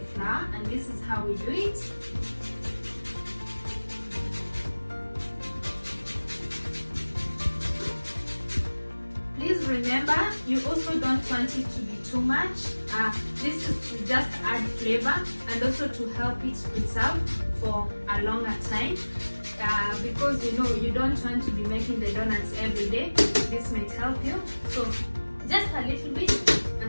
flour, and this is how we do it. Please remember, you also don't want it to be too much. This is to just add flavor and also to help it preserve for a longer time, because you don't want to be making the donuts every day. This might help you. So just a little bit,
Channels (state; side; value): inverted; both; correlation -1.00